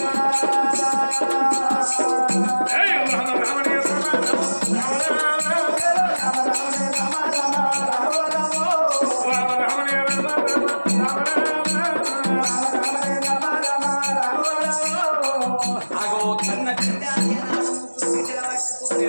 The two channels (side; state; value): both; inverted; correlation -1.00